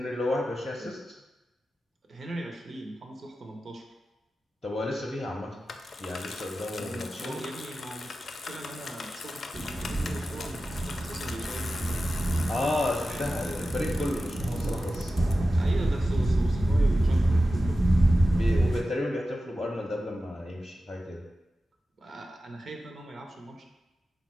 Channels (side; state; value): both; normal; correlation 0.93